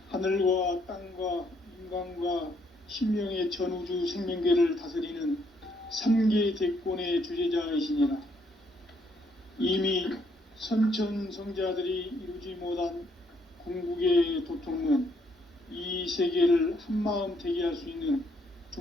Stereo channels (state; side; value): normal; both; correlation 0.71